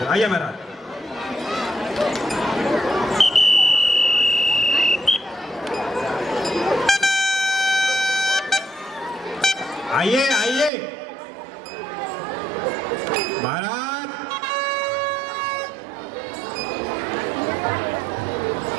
आइए महाराज। आइए आइए महाराज।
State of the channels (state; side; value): drops out; left; at 10.7 s